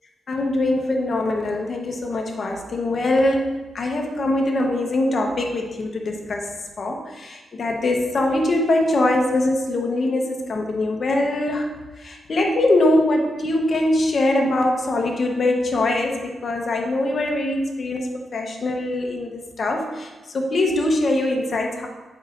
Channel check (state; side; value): normal; both; correlation 0.85